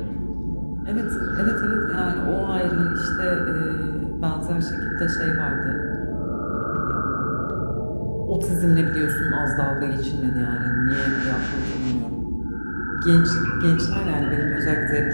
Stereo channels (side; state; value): both; inverted; correlation -1.00